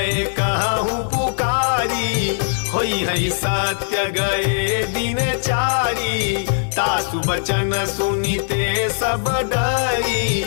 कहूँ पुकारी, होई है सत्य गए दिन चारी। तासु बचन सुनिते सब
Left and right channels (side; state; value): right; silent; digital silence